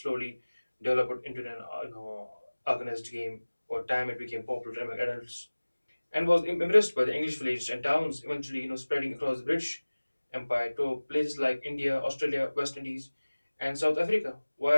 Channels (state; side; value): inverted; both; correlation -1.00